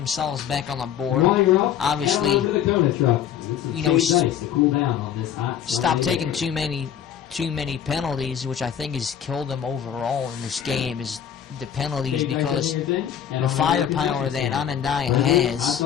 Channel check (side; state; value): right; quieter; 9.3 dB